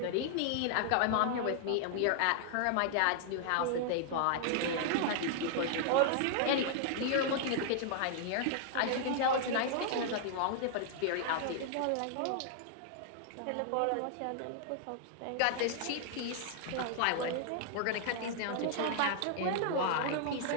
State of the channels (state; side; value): different; both; correlation -0.01